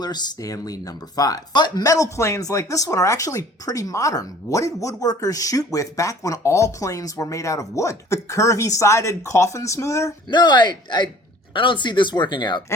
Stanley No. 5. But metal planes like this one are actually pretty modern. What did woodworkers shoot with back when all planes were made out of wood? The curvy-sided coffin smoother? No, I don't see this working out.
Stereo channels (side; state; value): both; normal; correlation 0.50